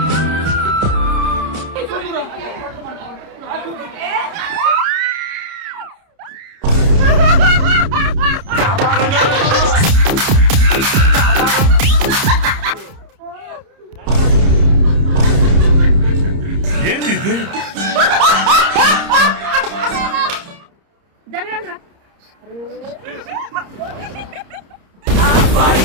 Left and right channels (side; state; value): left; late; 30 ms